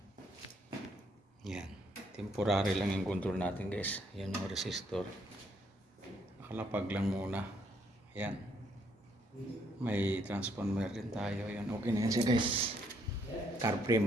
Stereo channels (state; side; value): normal; both; correlation 0.70